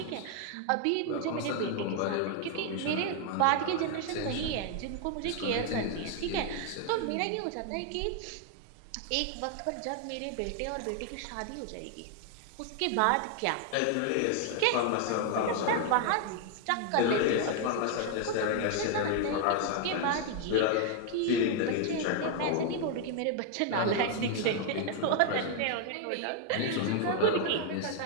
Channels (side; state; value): both; different; correlation 0.00